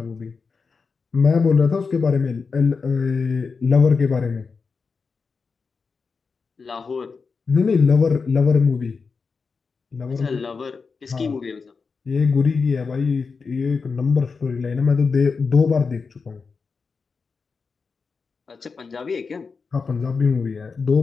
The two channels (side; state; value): right; quieter; 4.9 dB